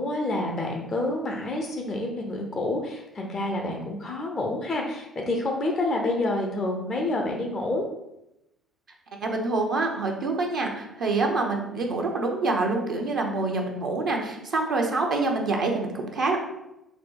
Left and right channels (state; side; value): normal; both; correlation 0.55